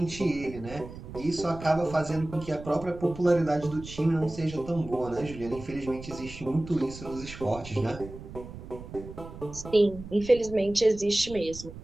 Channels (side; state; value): right; noise; rumble, 14 dB below the sound